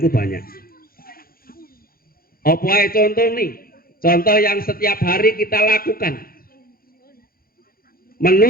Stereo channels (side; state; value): right; late; 0.43 ms